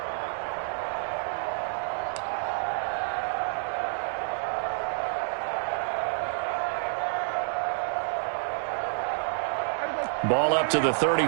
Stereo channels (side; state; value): left; silent; digital silence